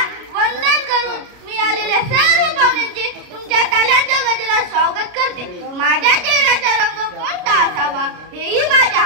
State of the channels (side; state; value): left; late; 33 ms